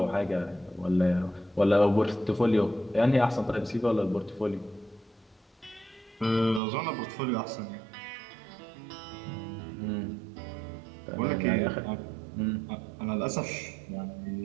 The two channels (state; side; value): drops out; left; at 6.6 s